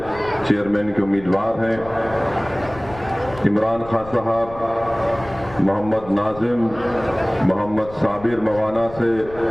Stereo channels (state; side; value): noise; left; rumble, 17 dB below the sound